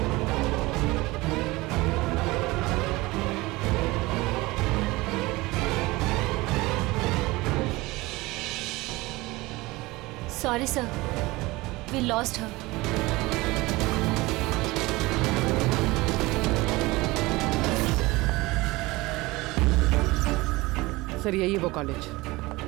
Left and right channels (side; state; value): left; quieter; 21.2 dB